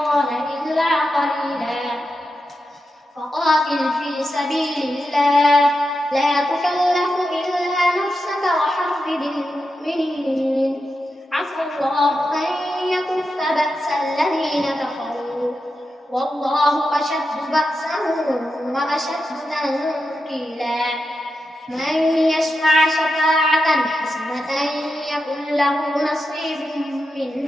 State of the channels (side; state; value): both; normal; correlation 0.88